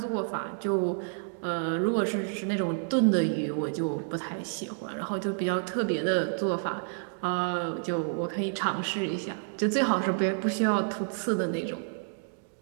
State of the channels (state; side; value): silent; left; digital silence